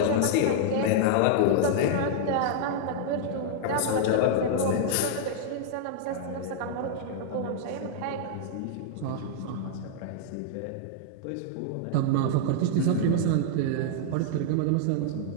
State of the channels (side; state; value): both; different; correlation -0.01